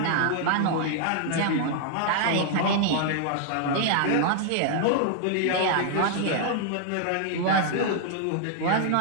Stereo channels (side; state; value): both; different; correlation 0.00